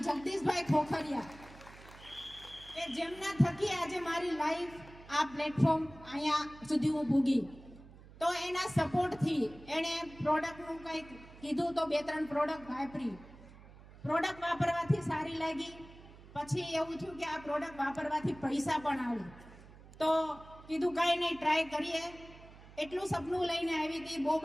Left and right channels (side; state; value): right; noise; hum, 20 dB below the sound